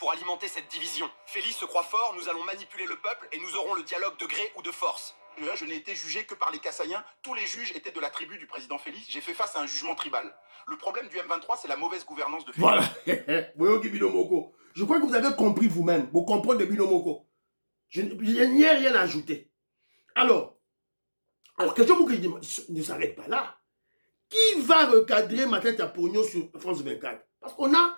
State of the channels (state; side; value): inverted; both; correlation -1.00